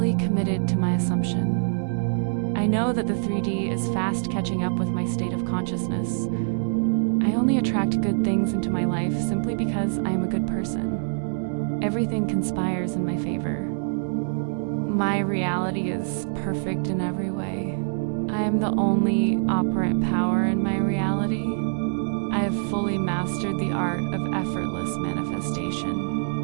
committed to my assumption. I know that the 3D is fast catching up with my state of consciousness. I only attract good things into my life simply because I am a good person. Everything conspires in my favor. My reality is perfect in every way. I am the only operant power in my reality. I have fully mastered the art of effortless manifestation.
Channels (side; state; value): left; silent; digital silence